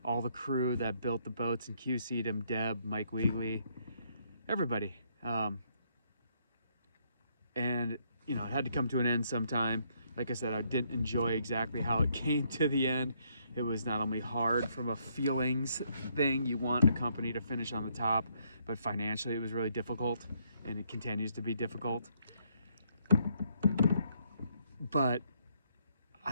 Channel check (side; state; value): both; inverted; correlation -0.71